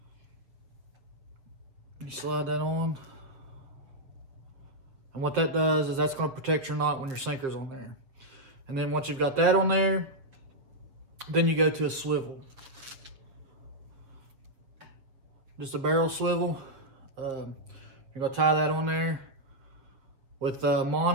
You slide that on. And what that does is that's going to protect your knot when your sinker's on there. And then once you've got that on there, then you go to a swivel. Just a barrel swivel. You're going to tie that on there. With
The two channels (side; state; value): left; late; 7.1 ms